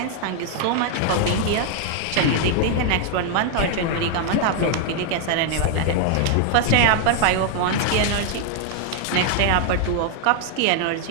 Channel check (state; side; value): different; both; correlation 0.00